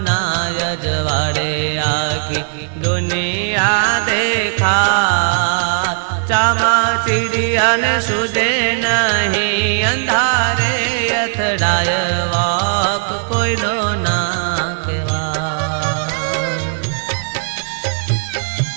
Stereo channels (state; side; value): silent; left; 58 dB below the other